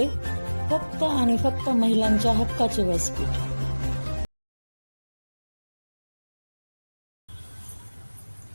फक्त आणि फक्त महिलांच्या हक्काचे व्यासपीठ.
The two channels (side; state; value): both; inverted; correlation -1.00